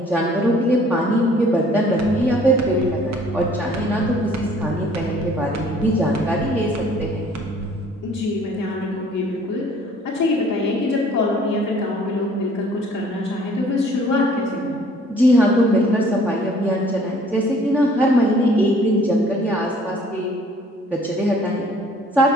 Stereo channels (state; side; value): normal; both; correlation 0.56